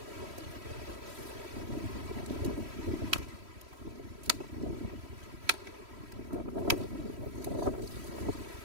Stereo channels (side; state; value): left; late; 3.1 ms